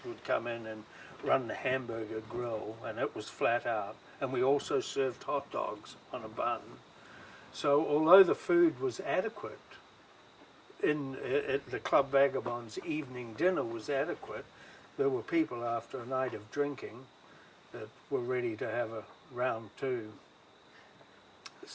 would come in and run the hamburger grill, and it was flat out. And we also served hot dogs on a bun. So although the food was adequate, at the Club Vagabond's evening dinner was adequate, there were people after a night of drinking that were ready to have a round two.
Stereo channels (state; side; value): identical; both; correlation 1.00